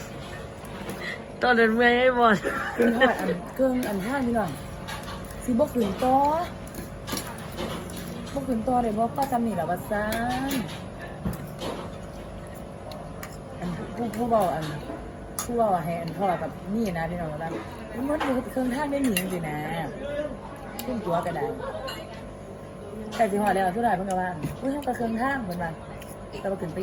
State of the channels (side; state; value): both; identical; correlation 1.00